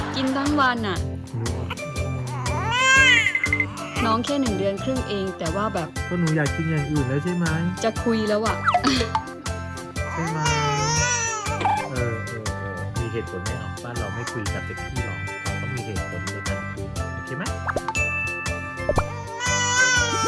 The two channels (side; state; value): both; identical; correlation 1.00